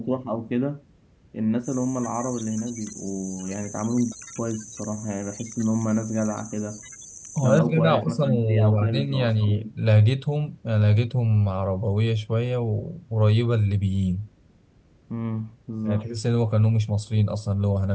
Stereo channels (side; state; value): both; identical; correlation 1.00